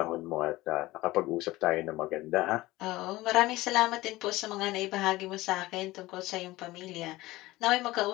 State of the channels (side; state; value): right; quieter; 18.6 dB